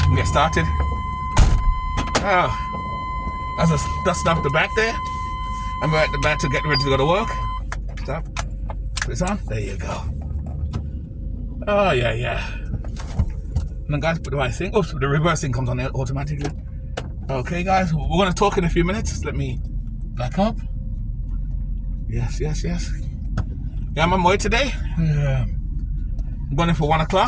Get started. Oh, that's just dusting off the back there. I'm at the back to get ready to go to work. Stop. Put this on. There you go. Oh yeah. And then guys, put the right thing. Oops, the reversing comes on there automatically. Okay guys, we're going to talk in a few minutes. Let me back up. Yes. Yeah, I'm on my way today. I'm going in for 1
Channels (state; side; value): identical; both; correlation 1.00